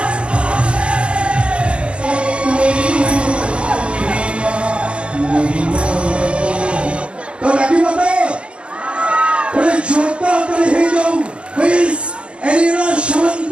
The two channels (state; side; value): late; left; 0.058 ms